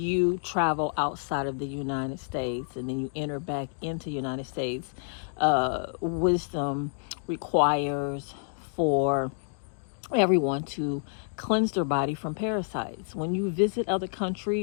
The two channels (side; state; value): right; silent; digital silence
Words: travel outside of the United States and then you enter back into the United States, wisdom requires for everyone to cleanse their body from parasites. When you visit other